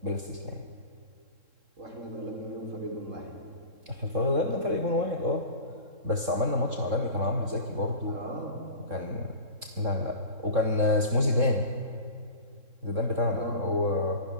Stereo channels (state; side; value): late; left; 3.7 ms